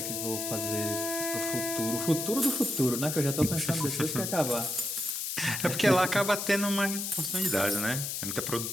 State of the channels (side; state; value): left; noise; hiss, 3 dB below the sound